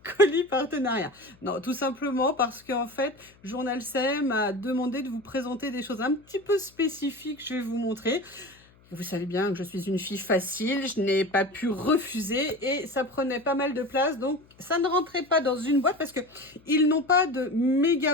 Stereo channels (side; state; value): left; noise; hum, 29 dB below the sound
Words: colis partenariats. Non, tout simplement parce qu'en fait, Journal C m'a demandé de vous présenter des choses un petit peu spécifiques, je vais vous montrer. Vous savez bien que je suis une fille facile, je n'ai pas pu refuser et ça prenait pas mal de place, donc ça ne rentrait pas dans une boîte parce que ils n'ont pas de